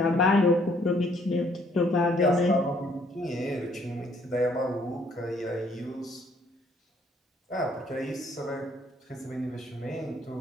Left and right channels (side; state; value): both; normal; correlation 0.64